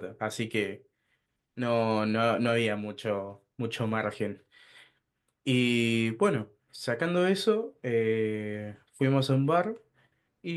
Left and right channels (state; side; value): identical; both; correlation 1.00